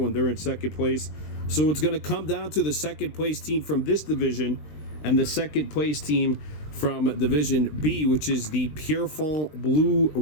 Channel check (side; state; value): right; late; 20 ms